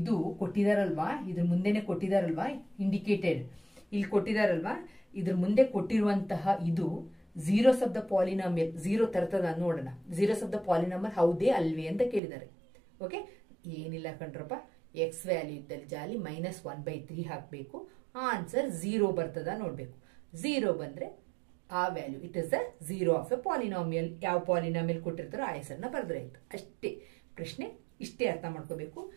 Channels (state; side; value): drops out; left; at 12.2 s